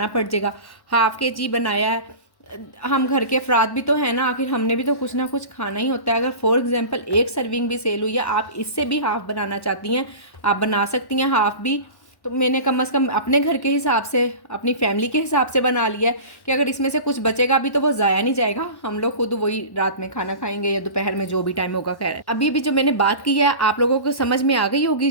पड़ जाएगा। हाफ kg बनाया है, हम घर के अफराद भी तो है ना, आखिर हमने भी तो कुछ ना कुछ खाना ही होता है। अगर फॉर एग्जांपल एक सर्विंग भी सेल हुई है, आप इससे भी हाफ़ बनाना चाहती हैं, आप बना सकती हैं हाफ़ भी। तो मैंने कम से कम अपने घर के हिसाब से, अपनी फैमिली के हिसाब से बना लिया है कि अगर इसमें से कुछ बचेगा भी तो वो ज़ाया नहीं जाएगा, हम लोग खुद वही रात में खाना खाएंगे या दोपहर में जो भी टाइम होगा। खैर, अभी भी जो मैंने बात की है आप लोगों को समझ में आ गई होगी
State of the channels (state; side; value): late; right; 1.1 ms